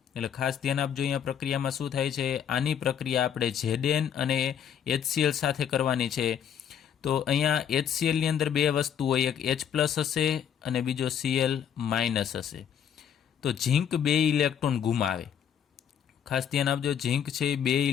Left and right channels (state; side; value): quieter; right; 8.7 dB